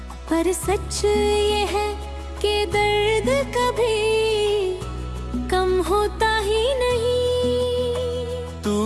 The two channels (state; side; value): identical; both; correlation 1.00